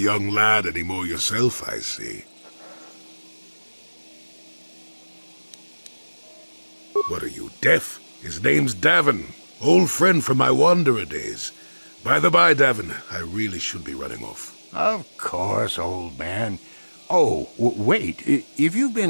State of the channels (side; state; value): both; inverted; correlation -1.00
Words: lad anymore yourself, I see. What are you, deaf? His name's Davin. Old friend from my wanderer days. By the by, Davin, I really should be running off. Of course, old man. Oh, wait. If you've